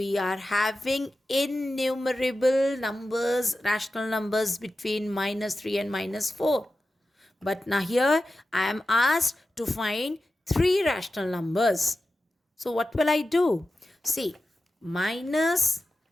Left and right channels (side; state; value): both; normal; correlation 0.93